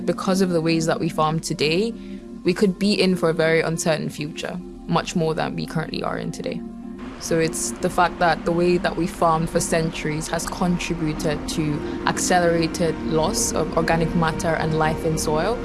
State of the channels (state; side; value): identical; both; correlation 1.00